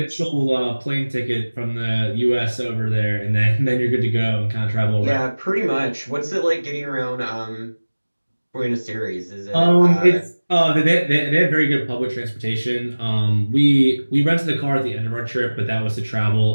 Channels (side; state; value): both; inverted; correlation -1.00